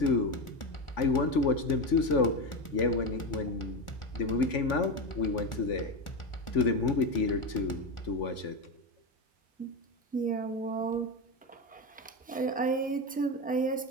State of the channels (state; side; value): normal; both; correlation 0.17